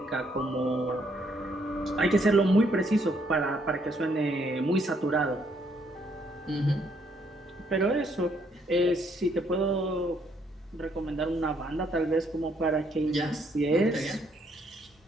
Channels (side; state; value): both; normal; correlation 0.70